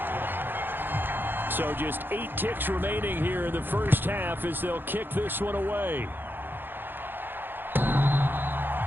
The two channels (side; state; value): left; late; 0.098 ms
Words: 14-7. So just 8 ticks remaining here in the first half as they'll kick this one away.